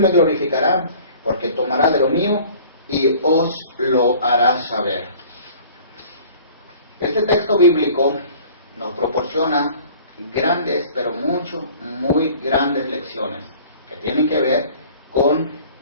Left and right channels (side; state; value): both; inverted; correlation -0.49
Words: glorificará, porque tomará de lo mío, y os lo hará saber. Este texto bíblico nos proporciona grandes, pero muy grandes lecciones, que tienen que ver con